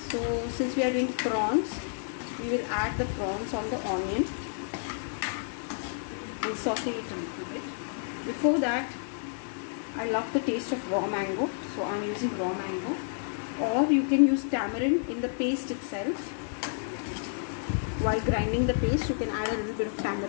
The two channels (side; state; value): right; silent; digital silence